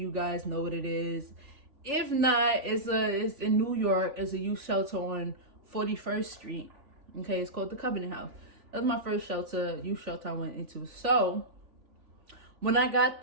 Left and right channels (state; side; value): late; left; 3.4 ms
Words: guys know what it is. If not, it's in New York. It's a youth shelter on 41st Street. Okay, it's called the Covenant House. That's my first youth shelter I went into. So when I got